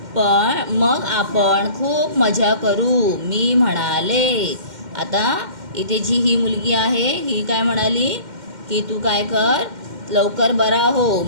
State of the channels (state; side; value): late; left; 2.1 ms